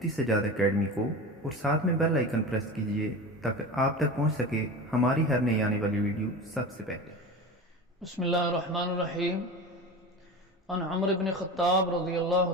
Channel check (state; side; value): normal; both; correlation 0.29